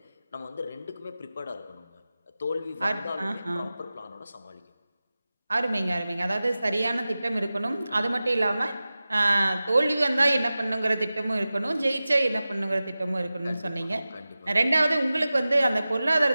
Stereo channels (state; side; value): inverted; both; correlation -0.96